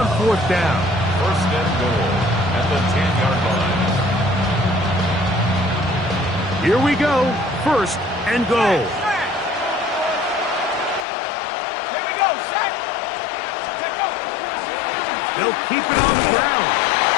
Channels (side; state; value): right; drops out; at 11.1 s